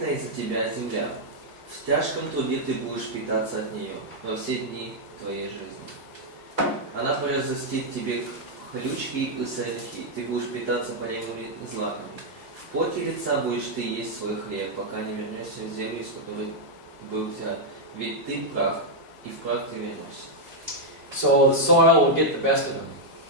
из-за тебя земля. В тяжком труде ты будешь питаться от нее во все дни твоей жизни. Она произрастит тебе хлючки и сорняки, ты будешь питаться полевыми злаками. В поте лица будешь ты есть свой хлеб, пока не вернешься в землю, из которой был взят. Ведь ты прах, и в прах ты вернешься. So the soil will get the best of him.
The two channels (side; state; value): left; late; 1.5 ms